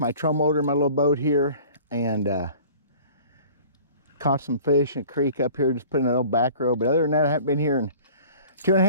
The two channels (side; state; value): both; inverted; correlation -0.46